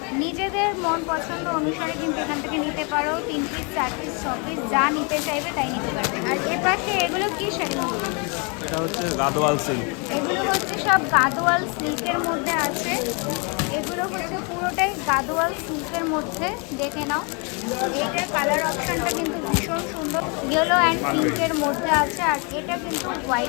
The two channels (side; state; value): right; quieter; 33.8 dB